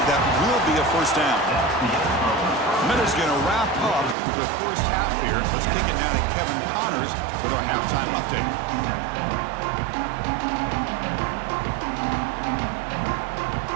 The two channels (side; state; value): left; drops out; at 4.2 s